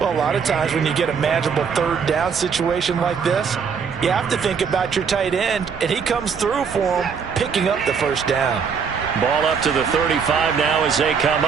Well, a lot of times when you get a manageable 3rd down situation like this, you have to think about your tight end, and he comes through for him, picking up the 1st down. Ball up to the 35 now as they come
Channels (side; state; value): left; quieter; 6.3 dB